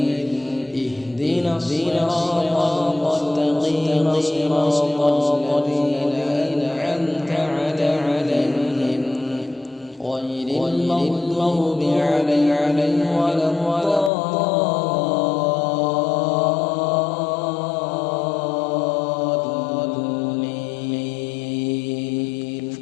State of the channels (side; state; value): right; drops out; at 14.1 s